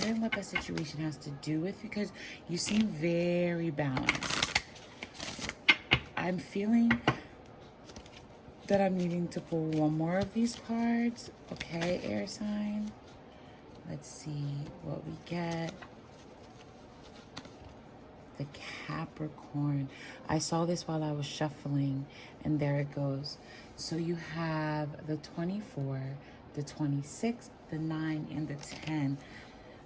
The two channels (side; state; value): both; identical; correlation 1.00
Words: what that situation has to do with, because you seem very balanced. I'm feeling that I'm needing to pull one more of these cards. Okay, air sign. Let's see what we get. The Capricorn. I saw this while I was shuffling, and there it goes. So you have the 24, the 26, the 9, and the 10.